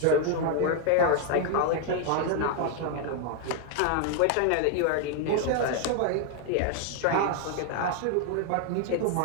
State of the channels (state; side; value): different; both; correlation 0.00